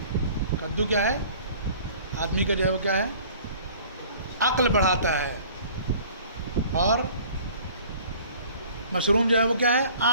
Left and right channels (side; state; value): both; inverted; correlation -0.49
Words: کدو کیا ہے؟ آدمی کا جو ہے وہ کیا ہے، عقل بڑھاتا ہے. اور مشروم جو ہے وہ کیا ہے،